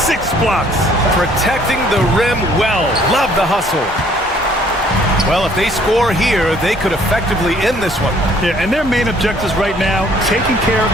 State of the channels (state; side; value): normal; both; correlation 0.60